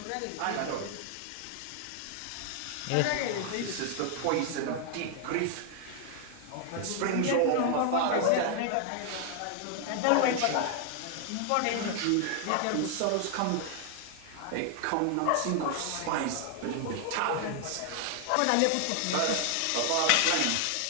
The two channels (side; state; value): both; different; correlation 0.00